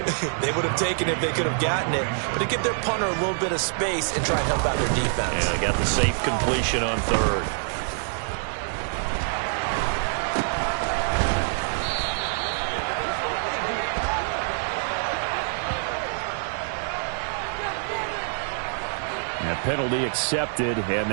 they would have taken it if they could have gotten it, but to give their punter a little bit of space and try and help out their defense. And they got the safe completion on third. And penalty accepted, and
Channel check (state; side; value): silent; left; 61 dB below the other